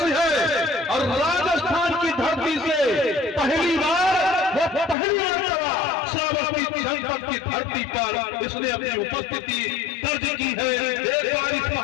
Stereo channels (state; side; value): drops out; right; at 5.0 s